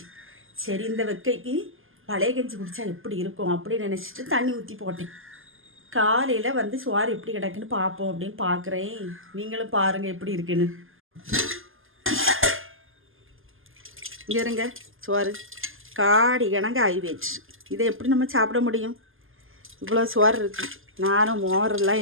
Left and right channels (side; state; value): left; late; 0.59 ms